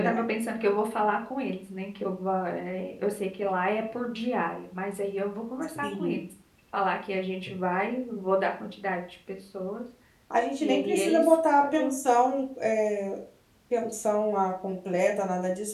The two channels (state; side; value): identical; both; correlation 1.00